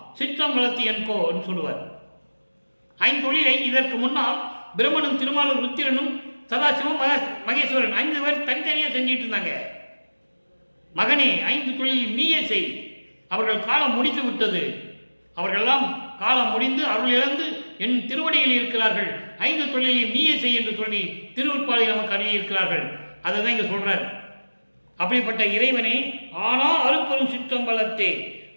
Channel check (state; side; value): inverted; both; correlation -1.00